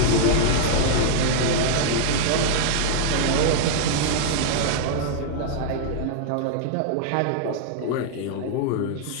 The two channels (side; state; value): both; different; correlation -0.01